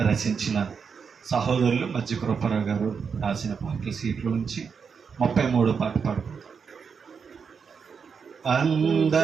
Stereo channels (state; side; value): quieter; left; 6.1 dB